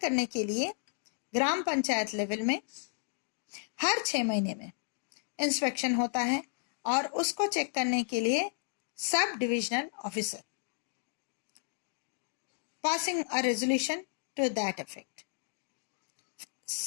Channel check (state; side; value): silent; right; digital silence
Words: के लिए ग्राम पंचायत लेवल में हर 6 महीने में इंस्पेक्शन होता है और उसको चेक करने के लिए sub divisional officer passing a resolution to that effect.